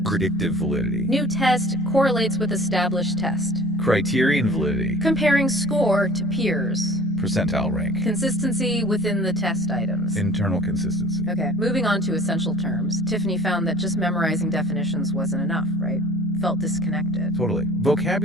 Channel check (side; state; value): both; normal; correlation 0.49